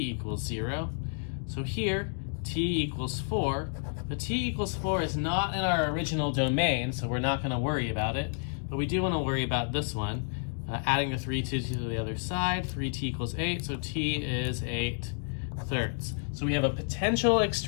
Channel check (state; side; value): silent; right; 58 dB below the other